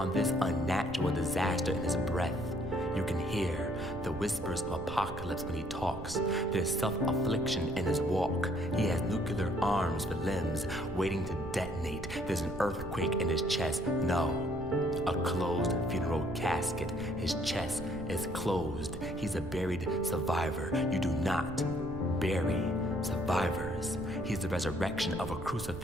this unnatural disaster in his breath. You can hear the whispers of apocalypse when he talks. There's self-affliction in his walk. He has nuclear arms for limbs waiting to detonate. There's an earthquake in his chest. No, a closed funeral casket. His chest is closed. He's a buried survivor. You do not bury survivors. He's the resurrection of a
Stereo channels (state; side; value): noise; right; rumble, 10 dB below the sound